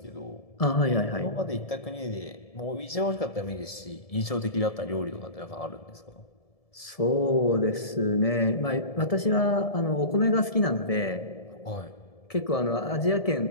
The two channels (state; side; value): late; right; 1.7 ms